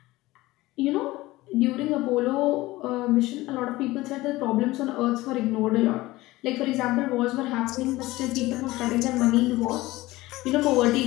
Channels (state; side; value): quieter; right; 18.7 dB